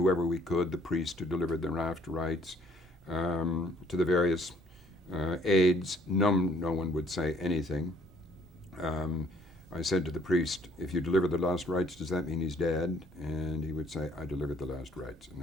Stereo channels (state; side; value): normal; both; correlation 0.61